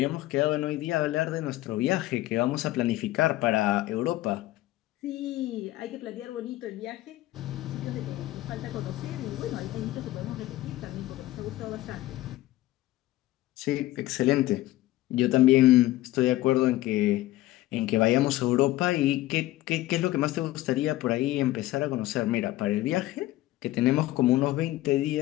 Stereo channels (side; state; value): right; quieter; 16.4 dB